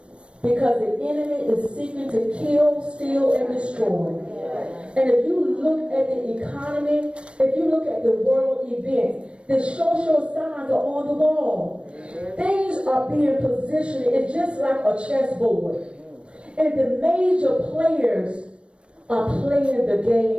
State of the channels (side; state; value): left; late; 0.059 ms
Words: Because the enemy is seeking to kill, steal, and destroy. And if you look at the economy, if you look at the world events, the social signs are on the wall. Things are being positioned. It's just like a chessboard. And the major players are playing the